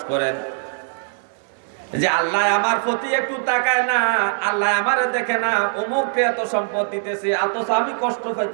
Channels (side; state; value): left; silent; digital silence